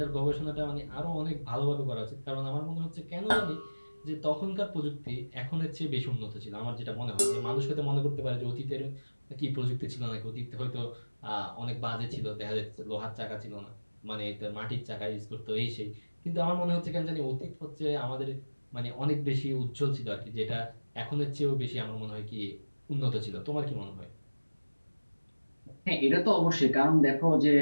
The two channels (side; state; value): both; inverted; correlation -1.00